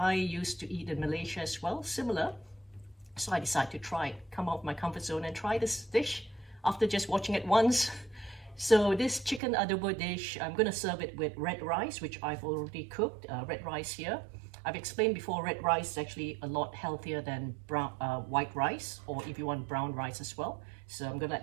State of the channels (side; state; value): left; drops out; at 9.4 s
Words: used to eat in Malaysia as well, similar. So I decided to try, come out of my comfort zone and try this dish after just watching it once. So this chicken adobo dish, I'm going to serve it with red rice, which I've already cooked, red rice here. I've explained before, red rice is actually a lot healthier than white rice, or if you want brown rice as well. So I'm going to